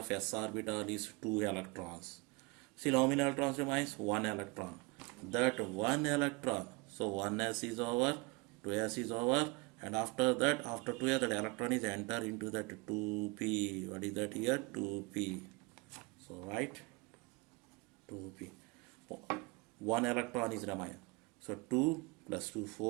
s orbital is 2 electrons. Still how many electrons remains? 1 electron. That 1 electron. So 1s is over, 2s is over, and after that, after 2s, that electron is enter into that 2p. What is that here? 2p. So write 2p. 1 electron is remain. So 2 plus 2,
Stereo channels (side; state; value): left; quieter; 27.6 dB